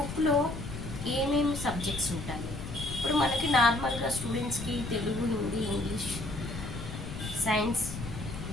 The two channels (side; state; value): left; noise; rumble, 8 dB below the sound